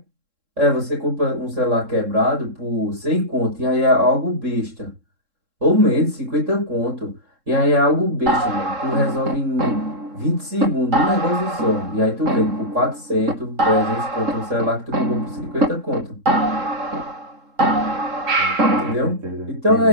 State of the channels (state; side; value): late; left; 3.7 ms